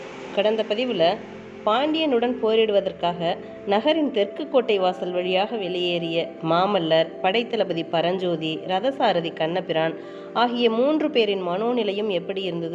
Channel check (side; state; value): both; identical; correlation 1.00